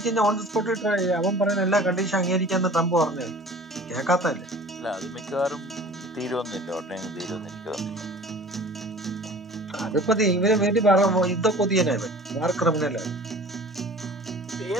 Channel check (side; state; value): both; normal; correlation 0.44